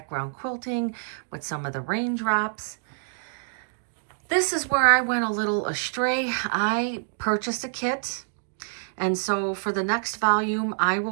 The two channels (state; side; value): silent; left; digital silence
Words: quilting with some of the raindrops. This is where I went a little astray. I purchased a kit, and so for the next volume, I